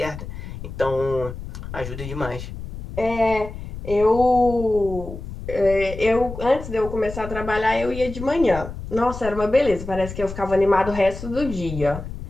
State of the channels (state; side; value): noise; left; rumble, 10 dB below the sound